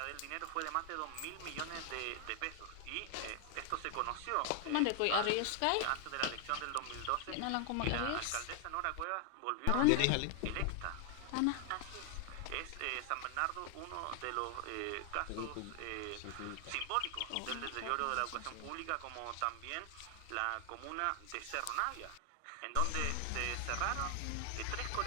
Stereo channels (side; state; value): both; different; correlation 0.00